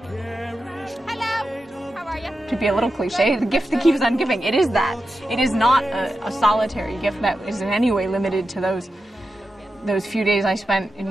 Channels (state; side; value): normal; both; correlation 0.90